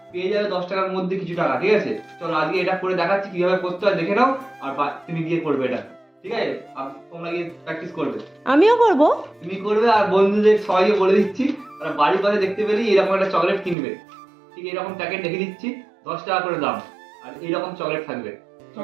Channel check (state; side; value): drops out; left; at 13.8 s